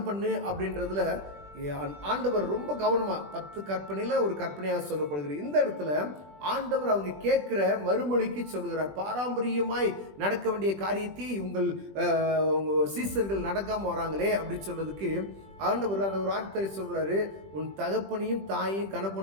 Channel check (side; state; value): left; late; 20 ms